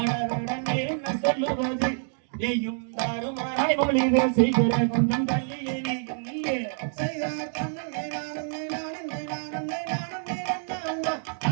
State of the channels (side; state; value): left; silent; digital silence